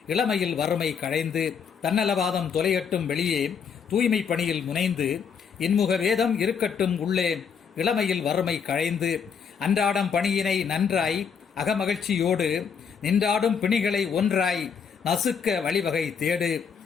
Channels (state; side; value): quieter; right; 6.6 dB